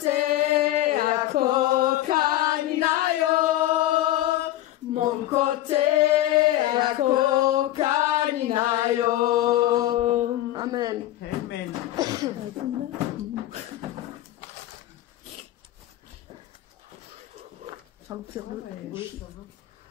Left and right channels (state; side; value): quieter; right; 14.6 dB